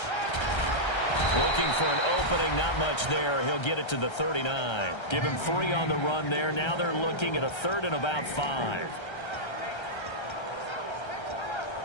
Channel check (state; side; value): late; right; 1.3 ms